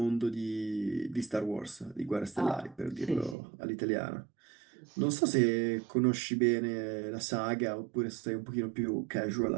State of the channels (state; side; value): drops out; left; at 3.4 s